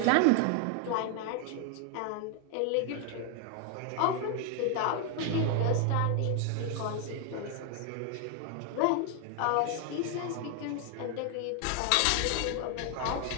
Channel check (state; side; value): different; both; correlation 0.00